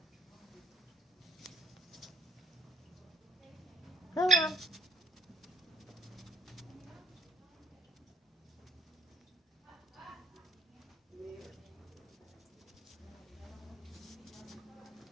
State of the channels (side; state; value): both; normal; correlation 0.62